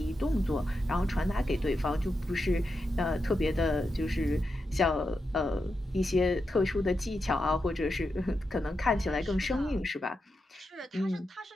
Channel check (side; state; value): both; normal; correlation 0.87